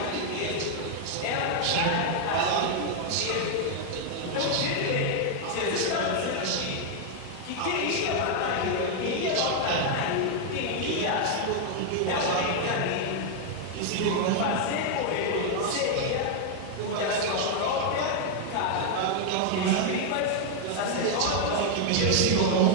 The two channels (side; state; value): both; different; correlation 0.00